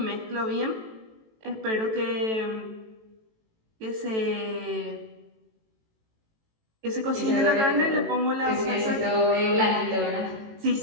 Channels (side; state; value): left; late; 18 ms